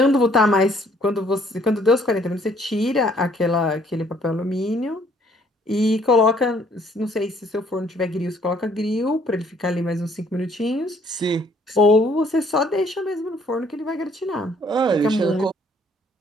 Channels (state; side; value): normal; both; correlation 0.62